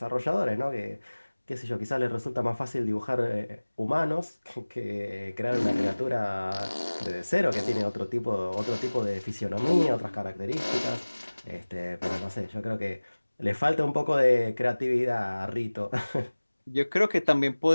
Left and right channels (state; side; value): inverted; both; correlation -1.00